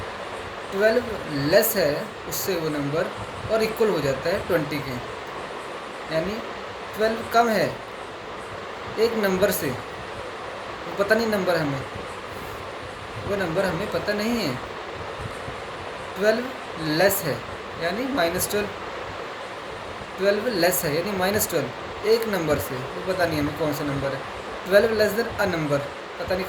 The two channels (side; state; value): both; identical; correlation 1.00